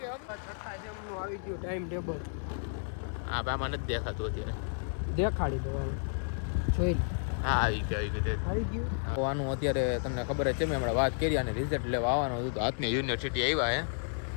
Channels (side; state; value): right; silent; digital silence